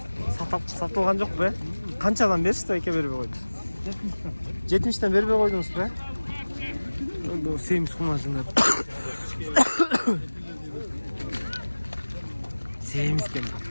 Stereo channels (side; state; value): both; inverted; correlation -1.00